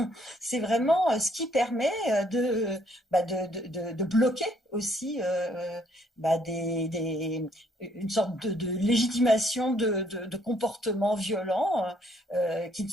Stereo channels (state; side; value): normal; both; correlation 0.68